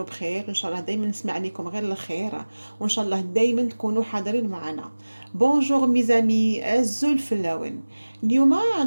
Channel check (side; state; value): both; inverted; correlation -1.00